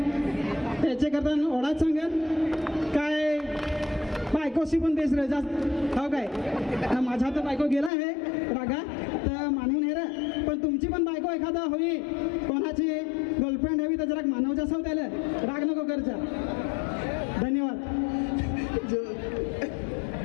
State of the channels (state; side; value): drops out; right; at 7.9 s